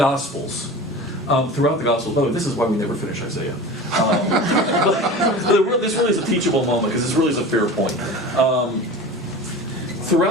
by the way, this is why we never finish Isaiah. But this really is a teachable moment because this really is a fair point.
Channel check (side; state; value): both; normal; correlation 0.34